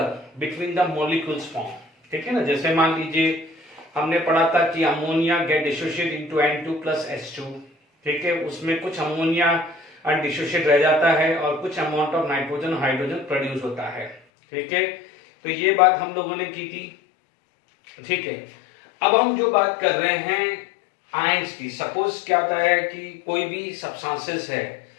between the molecules form. ठीक है ना, जैसे मान लीजिए हमने पढ़ा था कि ammonia get dissociate into N2 plus H2। ठीक है, उसमें कुछ अमोनिया अनडिसोशिएट रह जाता है और कुछ amount of nitrogen hydrogen produce होता है। ठीक है, तो ये बात हम लोगों ने की थी। ठीक है, अब हम जो बात कर रहे हैं आयंस की। सपोज क्या होता है कि कोई भी सब्सटेंसेस है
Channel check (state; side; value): drops out; right; at 14.2 s